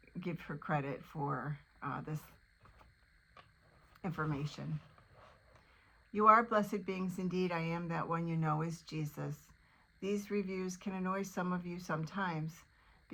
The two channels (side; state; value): both; identical; correlation 1.00